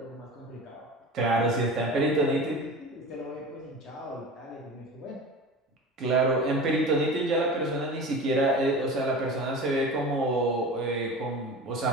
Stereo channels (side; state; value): both; normal; correlation 0.34